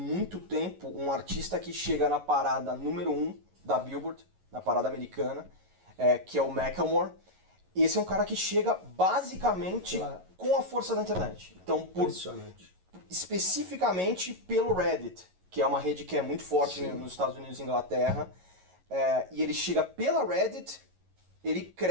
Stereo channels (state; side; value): late; left; 11 ms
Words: tempo um artista que chega na parada número 1 da Billboard, na parada americana, que é o Macklemore. Esse é um cara que chega basicamente com a força da internet. Então, especificamente pelo Reddit, que é uma rede que é muito forte nos Estados Unidos e Inglaterra, e ele chega pela Reddit, ele